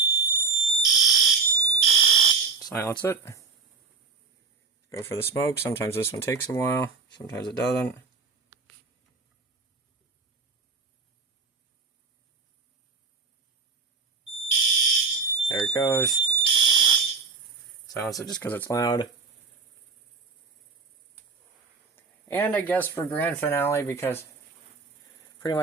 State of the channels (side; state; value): left; quieter; 4.7 dB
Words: Silence it. Go for the smoke. Sometimes this one takes a while, sometimes it doesn't. There it goes. Silence it just because it's loud. And I guess for grand finale, because pretty